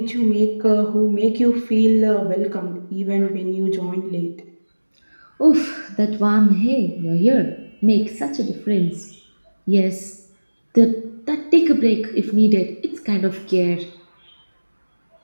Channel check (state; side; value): inverted; both; correlation -1.00